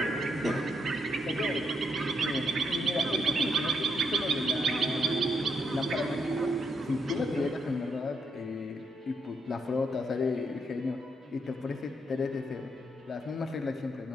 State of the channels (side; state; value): both; normal; correlation 0.76